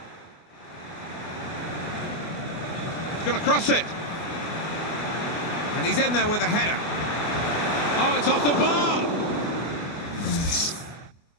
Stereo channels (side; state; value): right; late; 24 ms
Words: He's going to cross it. And he's in there with a header. Oh, it's off the bar.